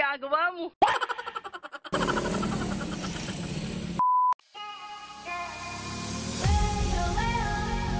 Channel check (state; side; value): identical; both; correlation 1.00